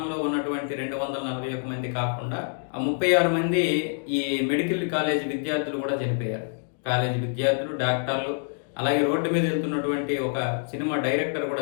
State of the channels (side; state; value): right; silent; digital silence